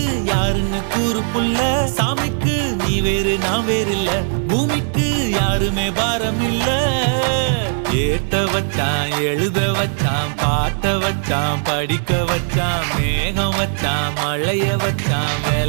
யாருன்னு கூறு புள்ள சாமிக்கு நீ வேறு நான் வேறு இல்ல பூமிக்கு யாருமே பாரம் இல்ல ஏத்த வச்சான் எழுத வச்சான் பாட்ட வச்சான் படிக்க வச்சான் மேகம் வச்சான் மழைய வச்சான்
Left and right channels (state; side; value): silent; left; digital silence